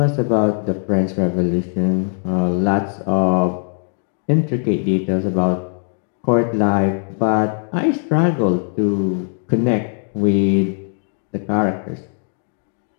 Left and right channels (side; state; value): right; silent; 66 dB below the other